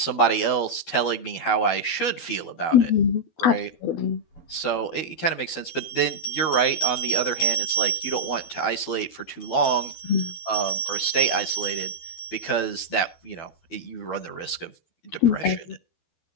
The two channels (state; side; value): late; right; 12 ms